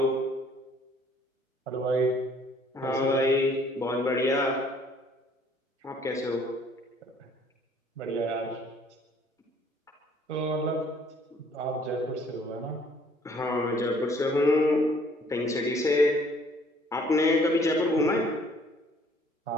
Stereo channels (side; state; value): both; normal; correlation 0.60